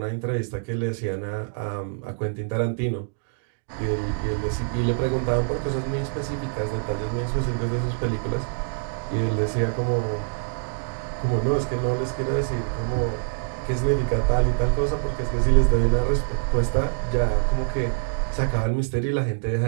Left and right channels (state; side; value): silent; left; digital silence